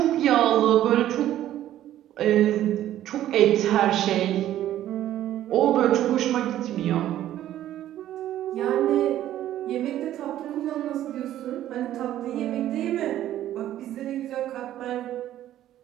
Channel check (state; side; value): quieter; left; 12.6 dB